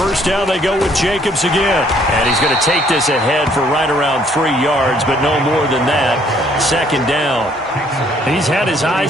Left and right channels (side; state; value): both; normal; correlation 0.64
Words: down, they go with Jacobs again. And he's going to take this ahead for right around 3 yards, but no more than that. Second down. He's had his